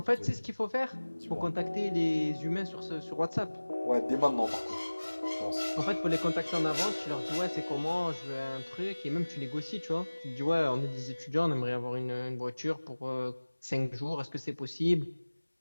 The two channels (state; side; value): inverted; both; correlation -1.00